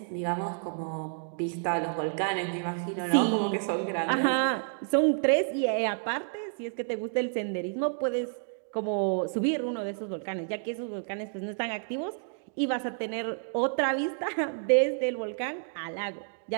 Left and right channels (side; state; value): left; silent; digital silence